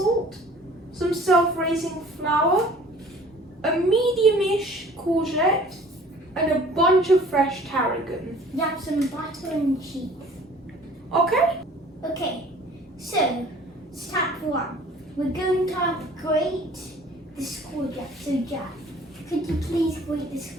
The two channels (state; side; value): normal; both; correlation 0.50